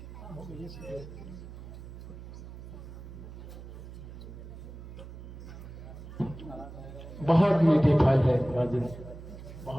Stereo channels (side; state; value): right; noise; hum, 13 dB below the sound